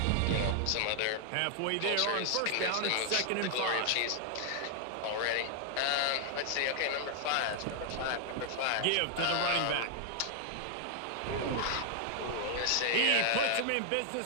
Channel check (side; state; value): both; different; correlation 0.00